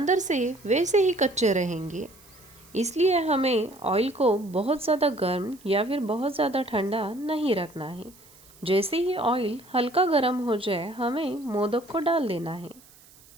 से वैसे ही कच्चे रहेंगे। इसलिए हमें ऑयल को बहुत ज़्यादा गर्म या फिर बहुत ज़्यादा ठंडा नहीं रखना है। जैसे ही ऑयल हल्का गर्म हो जाए, हमें मोदक को डाल देना है।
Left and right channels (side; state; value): right; noise; hiss, 25 dB below the sound